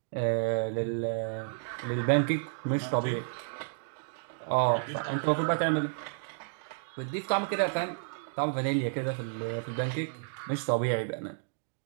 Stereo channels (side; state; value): left; silent; digital silence